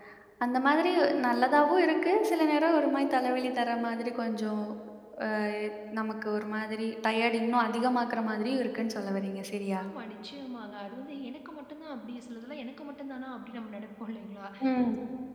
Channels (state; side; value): identical; both; correlation 1.00